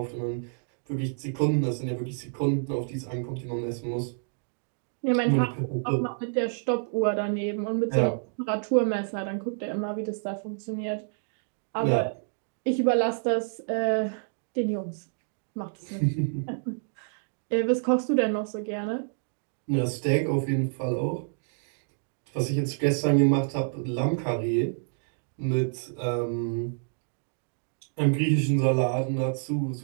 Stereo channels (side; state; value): left; silent; digital silence